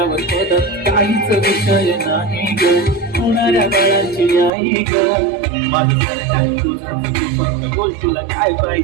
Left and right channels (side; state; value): left; drops out; at 4.5 s